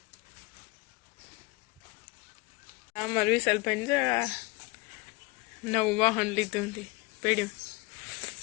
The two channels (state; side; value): quieter; right; 24.7 dB